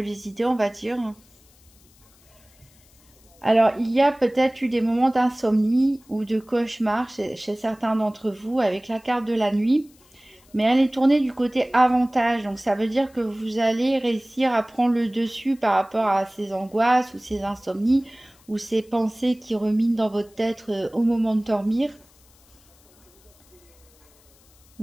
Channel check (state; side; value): noise; left; hiss, 30 dB below the sound